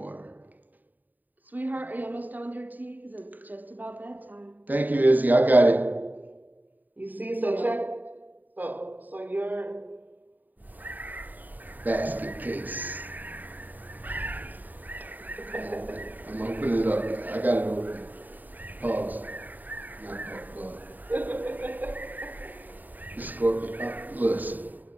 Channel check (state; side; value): late; left; 0.085 ms